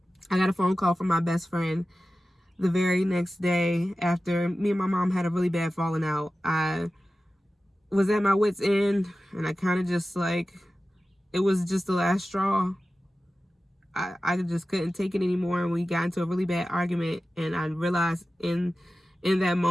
I got a phone call from my best friend the very next day after me and my mom had a really bad falling out. I was at my wit's end, and I kind of just like, it was just the last straw. I just couldn't take it anymore, and we got into a really bad argument, and I realized in that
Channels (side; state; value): both; normal; correlation 0.94